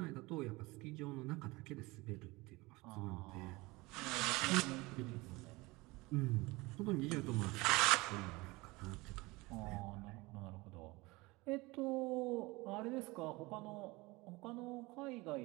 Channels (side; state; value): left; quieter; 22.7 dB